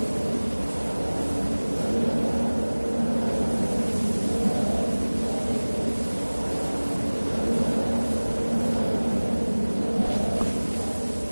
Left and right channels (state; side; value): inverted; both; correlation -1.00